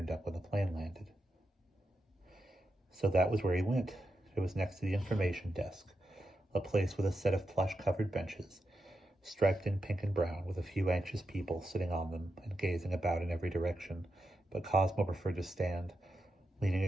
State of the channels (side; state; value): both; normal; correlation 0.87